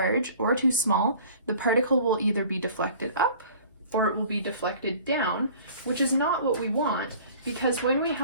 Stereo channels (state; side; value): inverted; both; correlation -0.48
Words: or too small, the particle will either be deflected up or it will be deflected down, which is not what we want, because when we